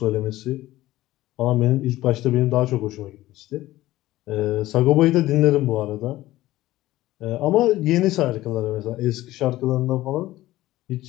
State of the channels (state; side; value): quieter; right; 16.2 dB